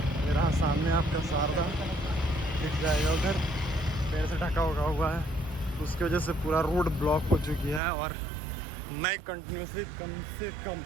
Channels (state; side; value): drops out; left; at 7.8 s